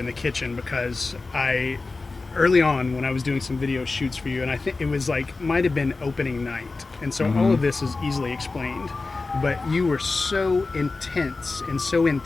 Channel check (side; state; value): right; quieter; 3.7 dB